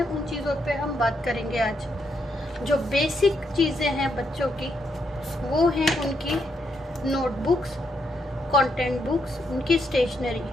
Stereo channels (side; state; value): both; normal; correlation 0.78